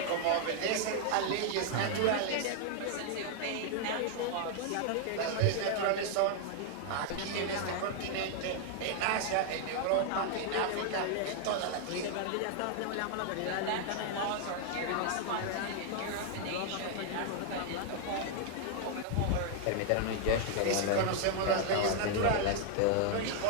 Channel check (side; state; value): both; different; correlation 0.00